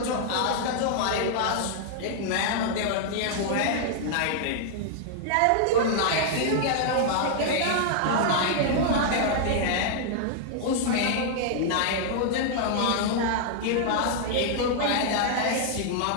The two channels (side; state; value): both; different; correlation -0.01